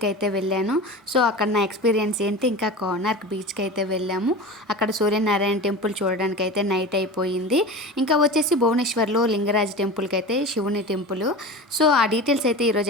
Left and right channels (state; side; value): normal; both; correlation 0.31